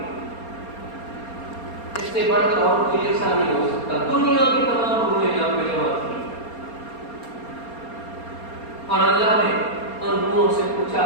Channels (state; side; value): late; right; 4.3 ms